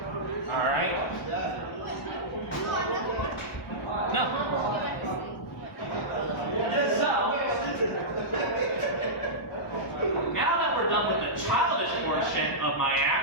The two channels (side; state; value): both; normal; correlation -0.14